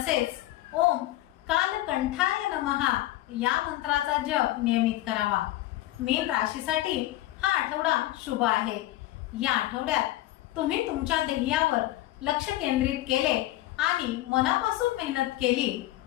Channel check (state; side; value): quieter; right; 15.9 dB